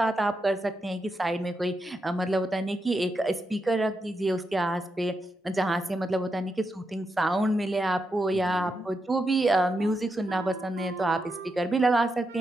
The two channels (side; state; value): both; normal; correlation 0.85